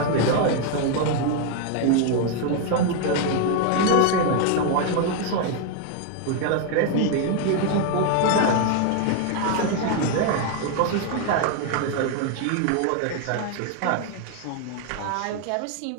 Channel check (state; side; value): different; both; correlation 0.00